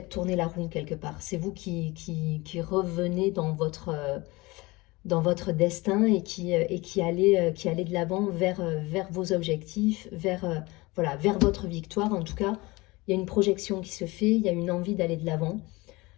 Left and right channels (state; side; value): quieter; right; 22.8 dB